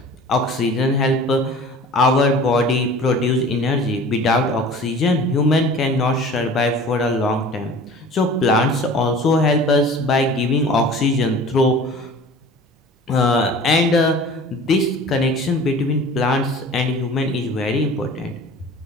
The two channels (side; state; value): both; normal; correlation 0.43